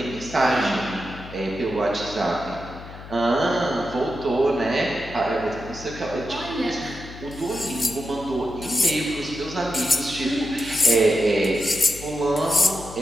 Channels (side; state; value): left; noise; hum, 14 dB below the sound